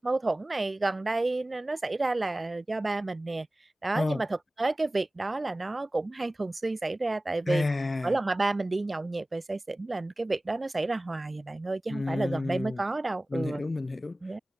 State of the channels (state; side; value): normal; both; correlation 0.97